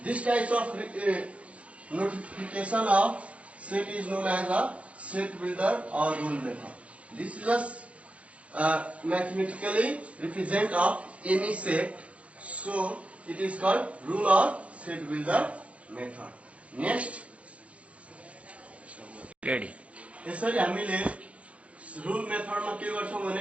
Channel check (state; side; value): late; left; 0.063 ms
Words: This type of notification of set is known as a set builder or rule method. This is a mathematically represent of any set, so it is called rule or set builder method. Next, ready. यसरी हामीले rule method मा के गर्छौं भने